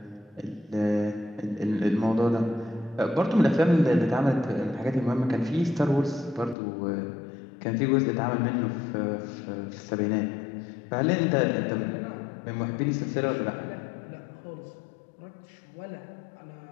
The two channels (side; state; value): right; drops out; at 6.6 s